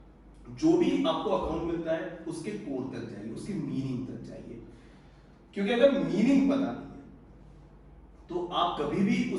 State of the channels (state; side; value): identical; both; correlation 1.00